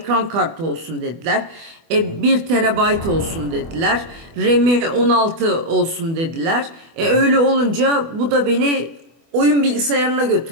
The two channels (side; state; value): left; late; 24 ms